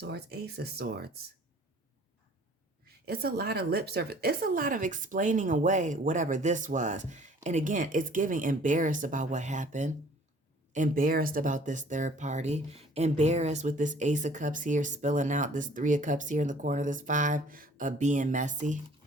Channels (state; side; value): normal; both; correlation 0.53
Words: Ace of Swords. It's a lot of lip service. It's a lot of explaining away whatever this was. And again, it's giving embarrassed about what happened. Embarrassed about this third party. Embarrassed with this Ace of Cups here spilling out, this Three of Cups here in the corner, this Five of being messy.